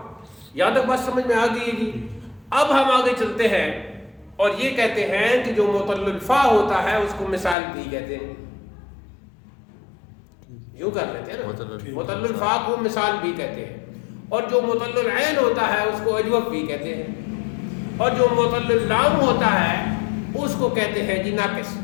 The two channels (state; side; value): drops out; right; at 7.6 s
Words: یہاں تک بات سمجھ میں آ گئی ہے جی. اب ہم آگے چلتے ہیں اور یہ کہتے ہیں کہ جو معطل الفا ہوتا ہے اس کو مثال بھی کہتے ہیں. یوں کر لیتے ہیں نا, معطل الفا کو مثال بھی کہتے ہیں, اور جو معطل العین ہوتا ہے اس کو اجوف بھی کہتے ہیں, اور جو معطل اللام ہوتا ہے اس کو کہتے ہیں جی ناقص.